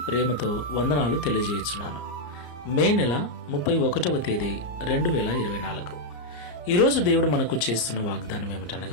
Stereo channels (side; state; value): right; late; 34 ms